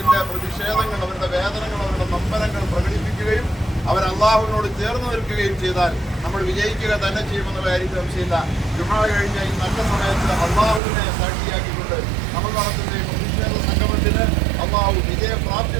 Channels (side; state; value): left; drops out; at 10.8 s